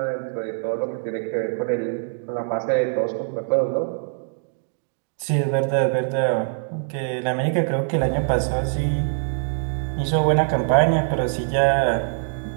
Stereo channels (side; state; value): left; silent; digital silence